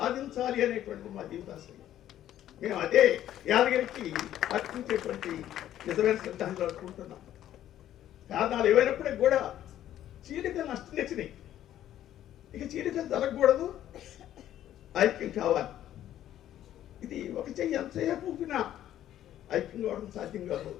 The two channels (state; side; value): quieter; right; 12.0 dB